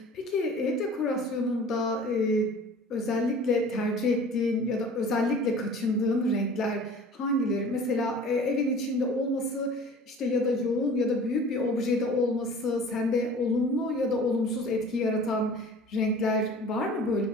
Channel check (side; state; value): both; normal; correlation 0.44